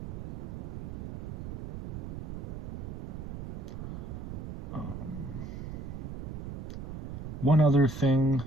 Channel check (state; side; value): noise; right; rumble, 7 dB below the sound